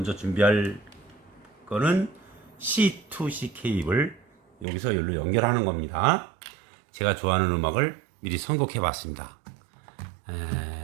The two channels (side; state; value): left; drops out; at 4.7 s